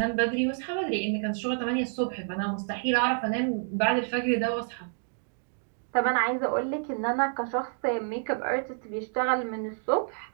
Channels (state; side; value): silent; left; digital silence